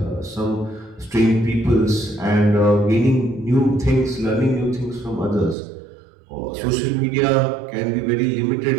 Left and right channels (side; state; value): left; drops out; at 5.6 s